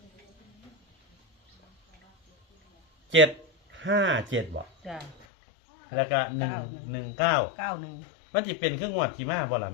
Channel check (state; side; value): drops out; right; at 5.2 s